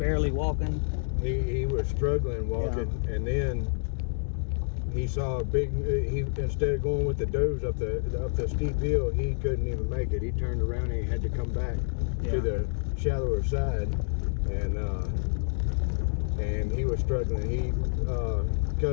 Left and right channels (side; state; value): right; silent; digital silence